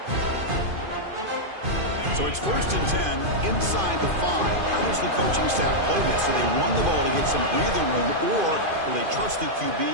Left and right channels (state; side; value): late; left; 2.5 ms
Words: So it's 1st and 10 inside the 5. How does the coaching staff play this? Do they run the ball to get some breathing room, or will they trust the QB